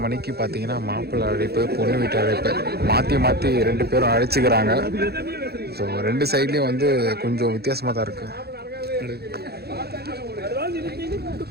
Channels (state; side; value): late; left; 0.46 ms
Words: மணிக்கு பார்த்தீங்கன்னா மாப்பிள்ளை அழைப்பு பொண்ணு வீட்டு அழைப்பு மாற்றி மாற்றி 2 பேரும் அழைச்சிக்கிறாங்க. ஸோ 2 சைட்லேயும் வந்து கொஞ்சம் வித்தியாசமாக தான் இருக்கு.